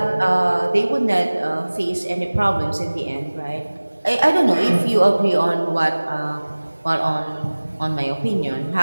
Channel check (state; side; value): inverted; both; correlation -1.00